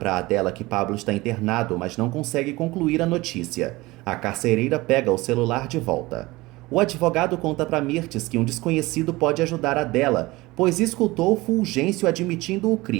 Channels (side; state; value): left; quieter; 20.8 dB